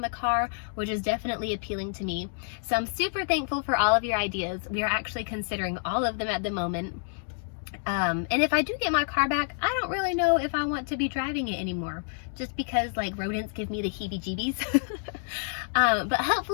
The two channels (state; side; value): silent; right; digital silence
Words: the car, which is definitely appealing to me. So I'm super thankful for all of your ideas. We are actually considering all of them at the moment. And if I do get my car back, I don't really know if I want to be driving it anymore, just because like rodents give me the heebie-jeebies. But